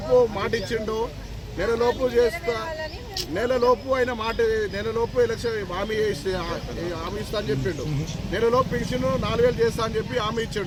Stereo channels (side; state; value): both; identical; correlation 1.00